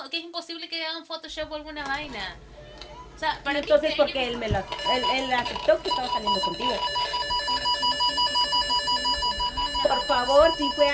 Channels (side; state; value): both; identical; correlation 1.00